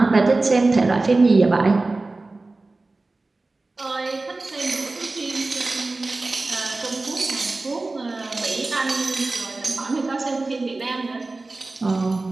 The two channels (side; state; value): left; quieter; 3.3 dB